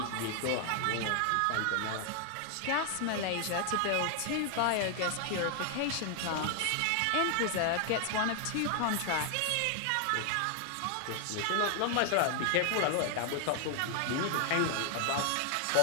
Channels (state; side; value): different; both; correlation 0.00